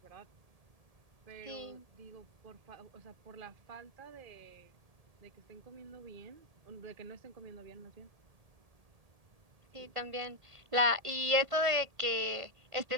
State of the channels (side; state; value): left; late; 1.7 ms